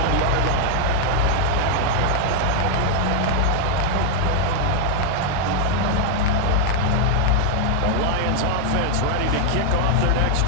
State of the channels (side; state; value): both; different; correlation 0.00